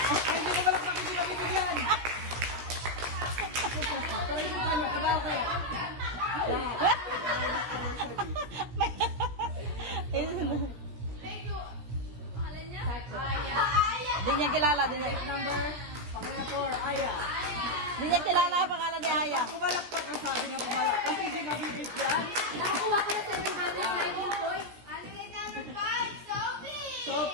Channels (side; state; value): left; late; 17 ms